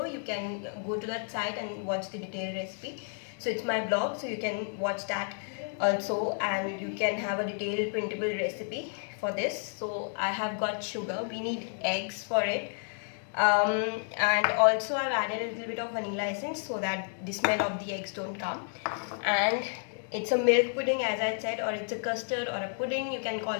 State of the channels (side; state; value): right; silent; 57 dB below the other